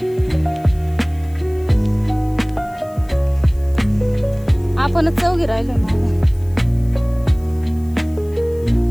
आपणच चौघी राहिलो मागे.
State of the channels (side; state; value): left; noise; hiss, 27 dB below the sound